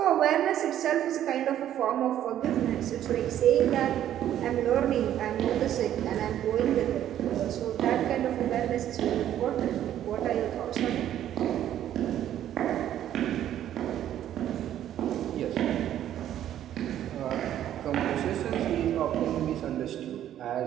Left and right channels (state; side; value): quieter; left; 11.4 dB